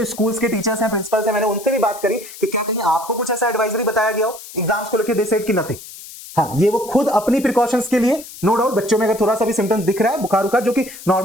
स्कूल्स के टीचर्स हैं, प्रिंसिपल्स हैं, मैंने उनसे भी बात करी कि क्या कहीं आपको कुछ ऐसा एडवाइजरी बताया गया हो एग्जाम्स को लेकर, दे सेड कि नथिंग, हाँ, ये वो खुद अपनी प्रिकॉशंस के लिए, नो डाउट बच्चों में अगर थोड़ा सा भी सिम्टम्स दिख रहा है बुखार उखार जो कि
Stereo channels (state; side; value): noise; left; hiss, 15 dB below the sound